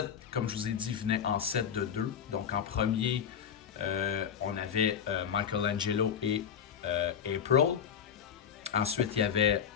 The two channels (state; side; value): quieter; right; 8.1 dB